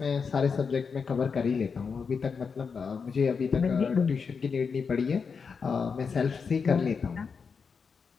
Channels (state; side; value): quieter; right; 5.6 dB